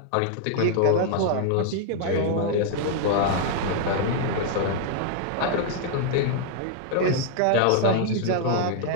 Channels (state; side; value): different; both; correlation 0.00